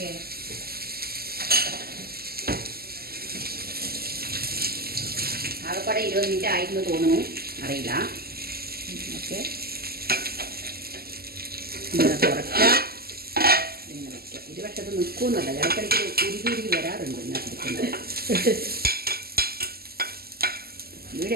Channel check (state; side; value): late; left; 0.45 ms